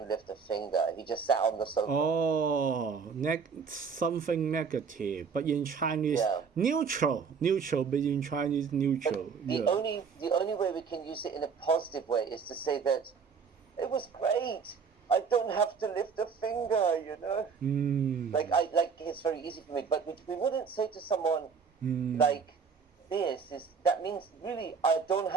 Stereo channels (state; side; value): quieter; left; 5.9 dB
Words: lift a finger. He just sat on the sofa. Something negative, but in Chinese, Yeah. neutral, but in Chinese, neutral. The only way we can use it in a positive way is to say that it was great. I don't have to lift a finger, you know. Like it's very easy for me. But we wouldn't say to someone like this. That means really I don't